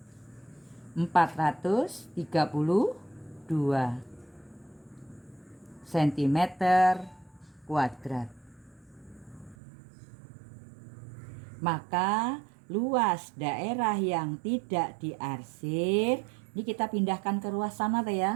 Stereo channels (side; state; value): left; drops out; at 9.6 s